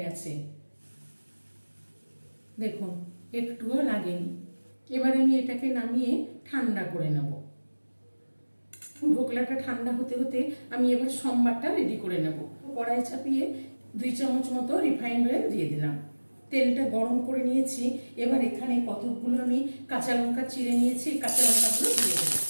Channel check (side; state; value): both; inverted; correlation -1.00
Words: গেছে। দেখুন একটুও লাগেনি। এবার আমি এটাকে নামিয়ে ঠান্ডা করে নেব। ধোকলাটা ঠান্ডা হতে হতে আমি এবার সম্বারটা রেডি করে নেব। কড়াই চাপিয়ে 2 চামচ মতো রিফাইন্ড অয়েল দিয়ে দিলাম। তেলটা গরম করে নিয়েছি। এবার এখানে কতগুলো আমি কাঁচা লঙ্কা চিড়ে নিয়েছি, কাঁচা লঙ্কাগুলো দিয়ে দেবো।